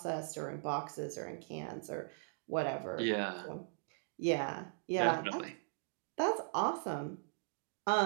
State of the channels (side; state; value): left; silent; digital silence